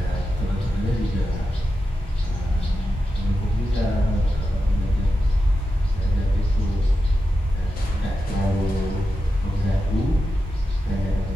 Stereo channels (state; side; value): normal; both; correlation 0.90